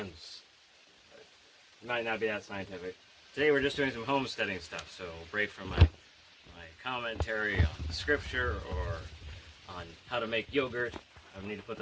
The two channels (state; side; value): identical; both; correlation 1.00